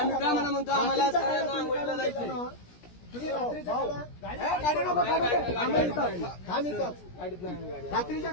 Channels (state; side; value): late; right; 17 ms